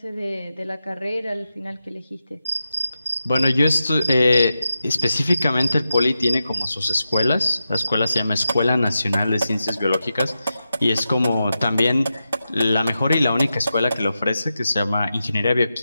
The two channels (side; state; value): both; inverted; correlation -0.90